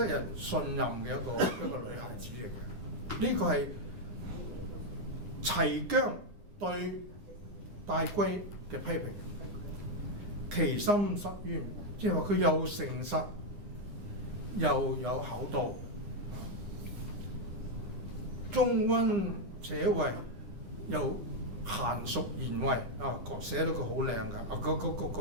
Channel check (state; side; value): late; left; 9.8 ms